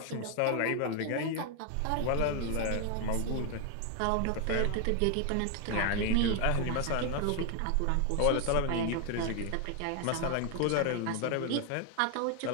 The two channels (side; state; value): both; different; correlation 0.00